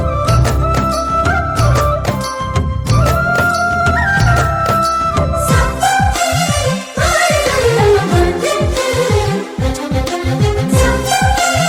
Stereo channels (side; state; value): both; identical; correlation 1.00